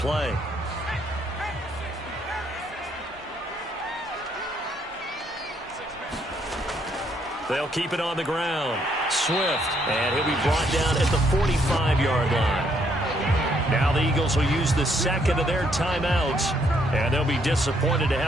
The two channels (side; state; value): both; normal; correlation 0.71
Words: They'll keep it on the ground. Swift, and he'll be brought down at the 45-yard line. Now the Eagles will use the second of their timeouts, and they'll be disappointed to